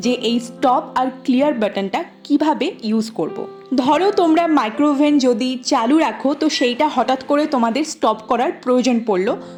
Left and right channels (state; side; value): identical; both; correlation 1.00